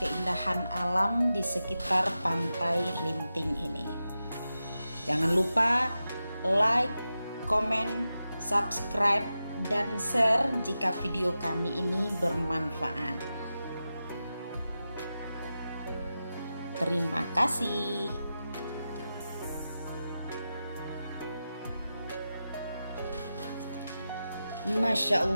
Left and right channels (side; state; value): both; inverted; correlation -0.92